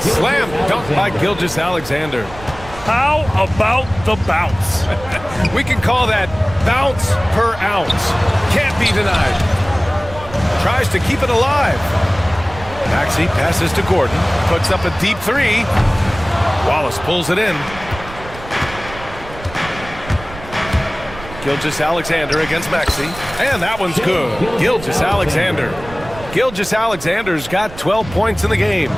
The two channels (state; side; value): noise; right; rumble, 15 dB below the sound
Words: slam dunk by Gilgeous Alexander. How about the bounce? We can call that bounce per ounce. Can't be denied. Tries to keep it alive. Maxey passes to Gordon. Puts up a deep 3. Wallace pulls it in. Gilgeous Alexander against Maxey. And that one's good. Gilgeous Alexander. Gilgeous Alexander's got 12 points in the game.